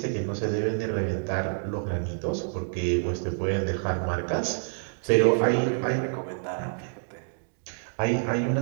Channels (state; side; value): silent; left; digital silence